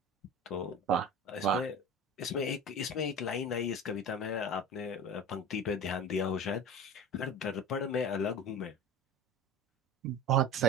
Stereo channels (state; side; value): normal; both; correlation 0.33